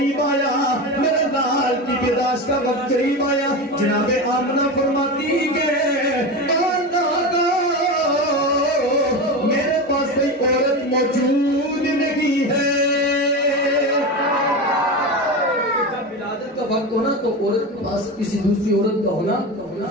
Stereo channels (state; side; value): normal; both; correlation 0.22